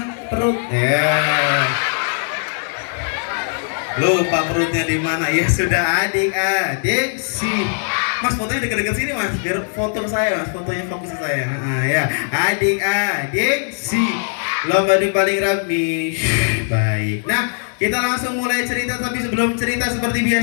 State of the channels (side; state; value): right; silent; digital silence